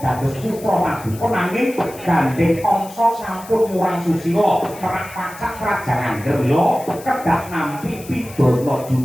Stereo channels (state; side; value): noise; left; hiss, 18 dB below the sound